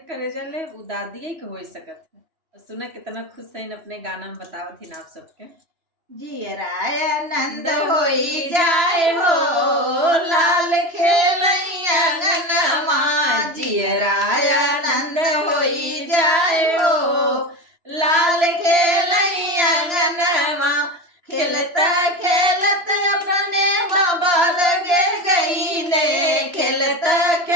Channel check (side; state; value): left; late; 3.0 ms